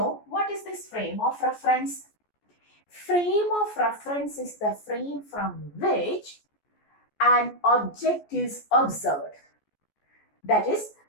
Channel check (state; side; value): late; right; 14 ms